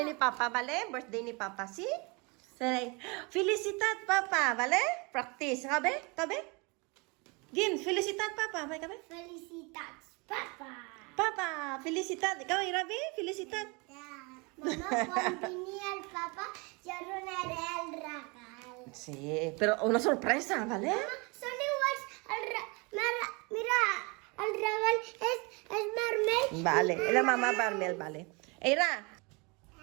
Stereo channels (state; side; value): quieter; left; 29.1 dB